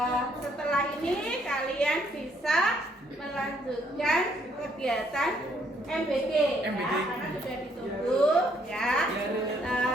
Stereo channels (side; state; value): both; normal; correlation 0.69